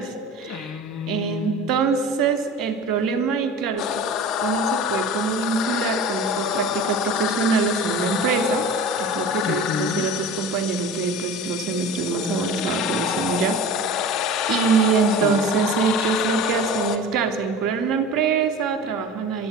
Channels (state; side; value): normal; both; correlation 0.35